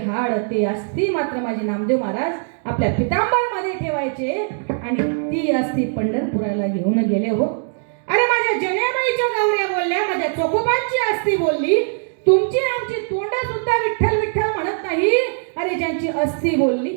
हाड ते अस्थी मात्र माझे नामदेव महाराज आपल्या पितांबरमध्ये ठेवायचे आणि ती अस्थी पंढरपुराला घेऊन गेले हो. अरे माझ्या जनेबाईच्या गावऱ्या बोलल्या, माझ्या चोखोबांची अस्थी बोलली. तुमची आमची तोंड सुद्धा विठ्ठल विठ्ठल म्हणत नाही. अरे ज्यांची अस्थी बोलली,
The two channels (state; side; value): silent; left; digital silence